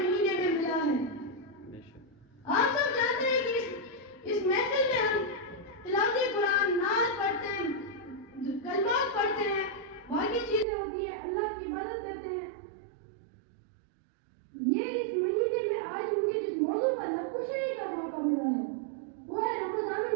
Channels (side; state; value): left; drops out; at 10.7 s